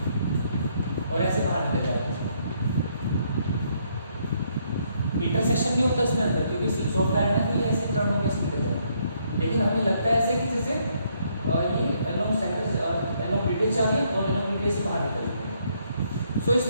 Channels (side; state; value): both; inverted; correlation -0.71